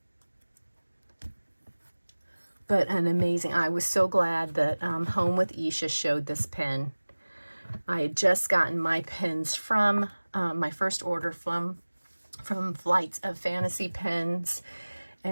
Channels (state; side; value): inverted; both; correlation -1.00